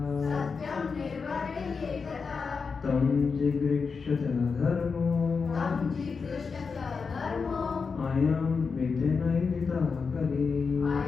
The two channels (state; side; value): quieter; right; 5.2 dB